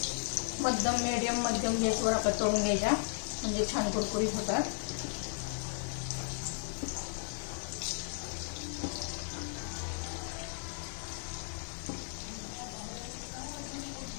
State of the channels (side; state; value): right; silent; digital silence